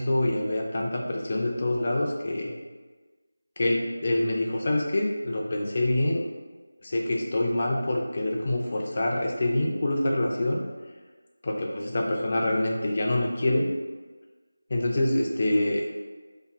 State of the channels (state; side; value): inverted; both; correlation -0.96